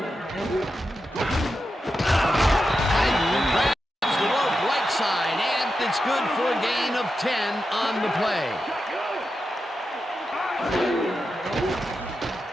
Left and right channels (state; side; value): normal; both; correlation 0.89